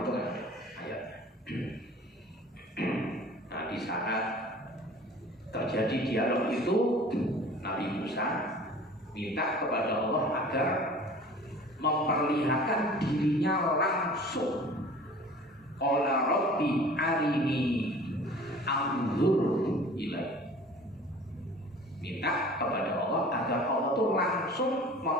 itu kan ayatnya. Nah, di saat terjadi dialog itu, Nabi Musa minta kepada Allah agar memperlihatkan dirinya langsung. Qala Rabbi arini anzur ilaihi. Minta kepada Allah agar Allah itu langsung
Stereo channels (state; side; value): normal; both; correlation 0.45